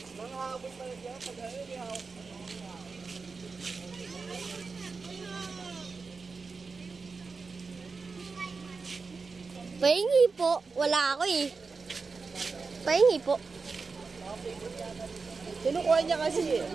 Pahingi po. Wala ako eh. Pahingi po. Kinukuha niya kasi eh.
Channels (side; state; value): left; quieter; 4.5 dB